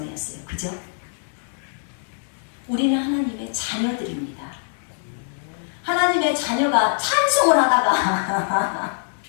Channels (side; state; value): right; silent; 63 dB below the other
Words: 그죠? 우리는 하나님의 자녀들입니다. 하나님의 자녀가 찬송을 하다가